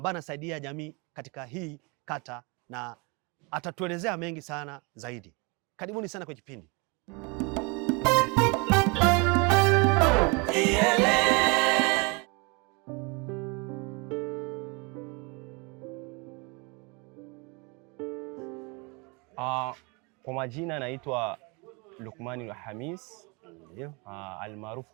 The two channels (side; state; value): left; quieter; 29.9 dB